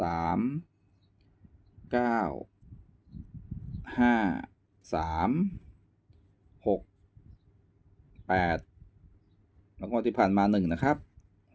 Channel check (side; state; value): both; identical; correlation 1.00